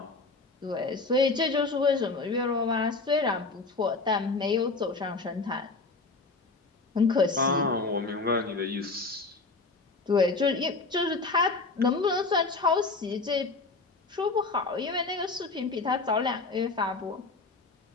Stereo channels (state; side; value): quieter; right; 3.8 dB